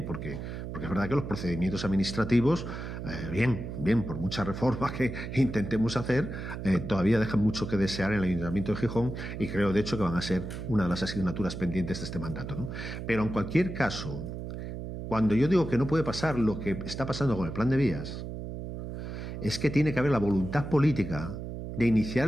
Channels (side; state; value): right; noise; hum, 7 dB below the sound